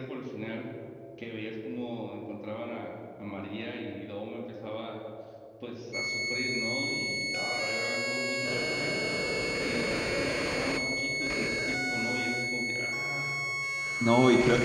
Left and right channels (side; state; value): both; identical; correlation 1.00